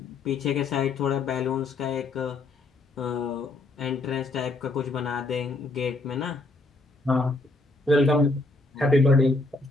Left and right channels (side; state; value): right; quieter; 3.1 dB